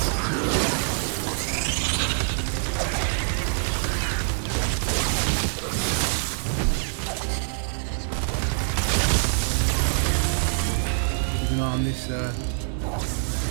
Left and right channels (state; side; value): silent; left; 62 dB below the other